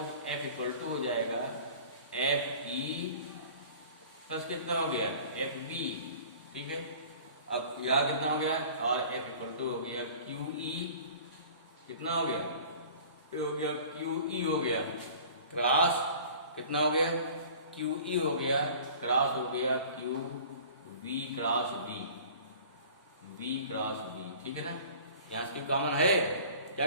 F इक्वल टू हो जाएगा FE प्लस कितना हो गया, FB, ठीक है। अब यहाँ कितना हो गया, और F इक्वल टू हो गया QE, कितना हो गया, हो गया QE हो गया क्रॉस, कितना हो गया, QE हो गया क्रॉस हो गया QV cross B, V cross B, ठीक है ना। यहाँ से कॉमन है,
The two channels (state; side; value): inverted; both; correlation -0.45